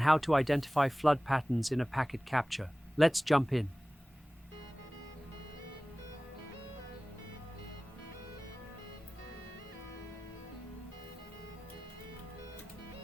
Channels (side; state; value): both; normal; correlation 0.98